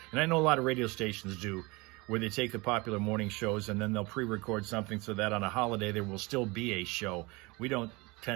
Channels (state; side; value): quieter; left; 24.9 dB